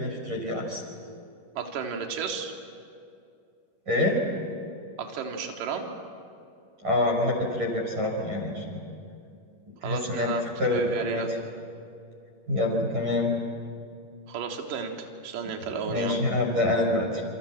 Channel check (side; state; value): left; late; 11 ms